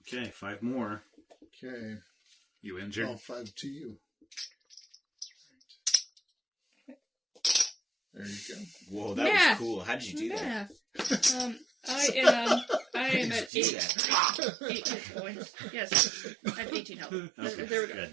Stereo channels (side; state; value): left; drops out; at 13.5 s